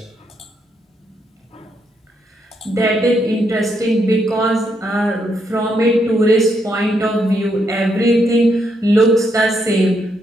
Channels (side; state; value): both; normal; correlation 0.77